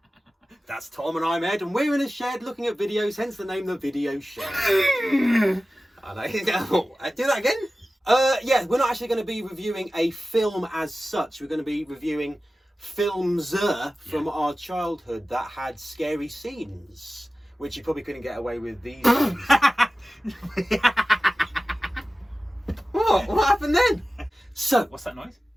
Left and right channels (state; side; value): normal; both; correlation 0.95